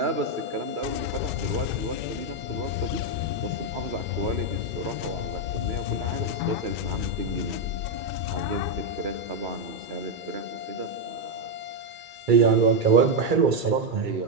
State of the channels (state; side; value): late; left; 2.3 ms